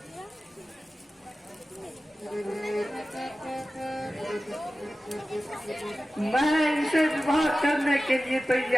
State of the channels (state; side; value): normal; both; correlation 0.95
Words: मैं इनसे विवाह करने के लिए